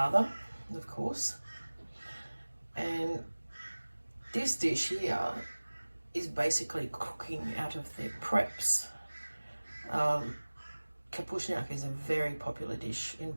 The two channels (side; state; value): both; inverted; correlation -1.00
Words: of course. And this dish here is basically cooking out of their preps. Kapusniak is a very popular dish in